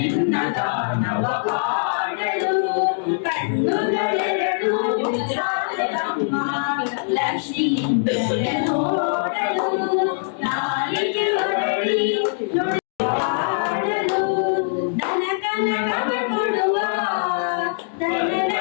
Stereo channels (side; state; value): right; silent; digital silence